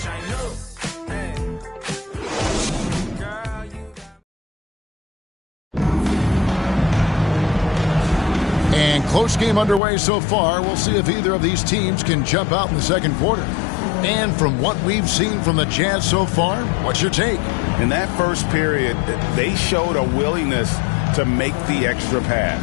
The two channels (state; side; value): drops out; right; at 9.8 s